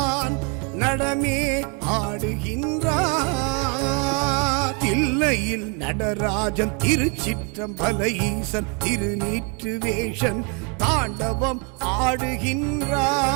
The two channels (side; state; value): left; quieter; 35.1 dB